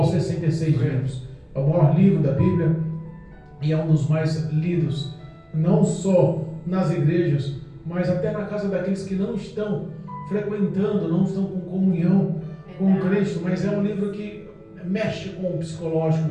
66 livros. É o maior livro da Bíblia e é um dos mais lidos, não só nas igrejas, mas até na casa daqueles que não estão frequentando, não estão com comunhão com Cristo. Mas é um livro que mexe com o psicológico,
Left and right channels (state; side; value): identical; both; correlation 1.00